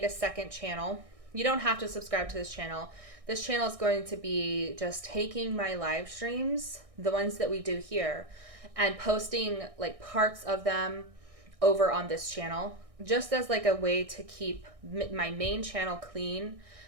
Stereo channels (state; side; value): late; left; 1.6 ms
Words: a second channel. You don't have to subscribe to this channel. This channel is going to be just taking my live streams, the ones that we do here, and posting like parts of them over on this channel, just as like a way to keep my main channel clean,